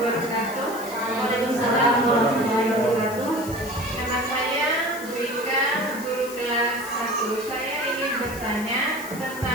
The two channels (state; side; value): noise; left; hiss, 14 dB below the sound